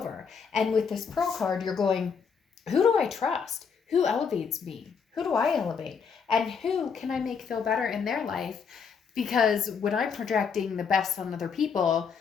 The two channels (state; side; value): quieter; right; 6.2 dB